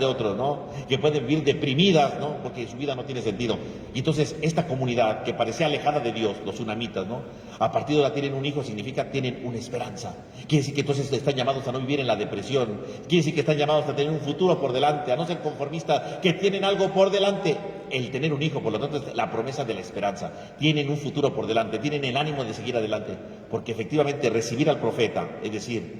otros, ¿no? Que pueden vivir deprimidas, ¿no?, porque su vida no tiene sentido. Y entonces esta comunidad que parecía alejada de Dios, los sunamitas, ¿no?, a partir de ahora tienen un hijo, significa tienen una esperanza. Quiere decir que entonces están llamados a no vivir en la depresión, quiere decir que están llamados a tener un futuro por delante, a no ser conformistas, que tienen algo por delante. El tener un hijo, por lo tanto, es la promesa de la esperanza. Tienen un futuro por delante, tienen el ánimo de seguir adelante, porque efectivamente recibir al profeta, es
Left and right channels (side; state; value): both; identical; correlation 1.00